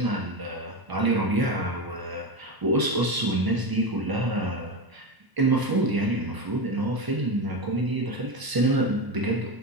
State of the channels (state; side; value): late; left; 1.0 ms